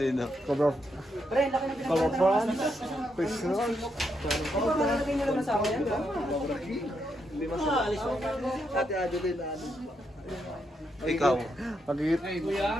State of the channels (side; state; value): both; normal; correlation 0.80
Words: Cobra France. Pixel. Ikaw.